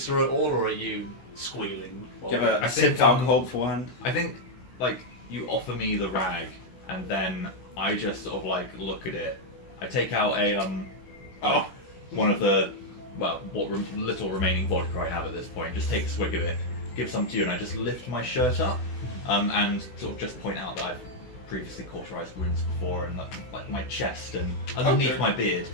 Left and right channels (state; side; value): late; right; 16 ms